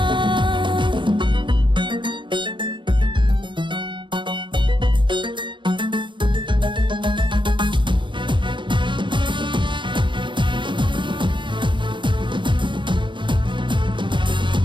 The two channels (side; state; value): left; late; 0.23 ms